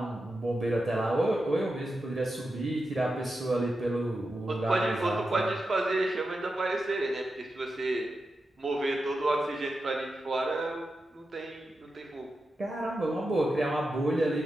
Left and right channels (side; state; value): both; normal; correlation 0.90